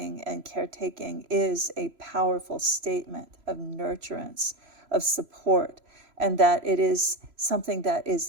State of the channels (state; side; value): late; left; 3.0 ms